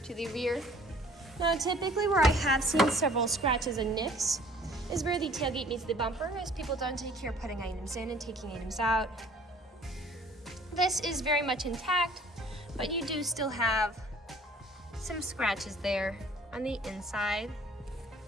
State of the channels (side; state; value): both; normal; correlation 0.53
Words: to the rear. Now typically where I have seen several scratches and nicks is where the tailgate meets the bumper, as people don't take care of putting items in and taking items out. This is very much intact, but you do still have some scratches there on the inside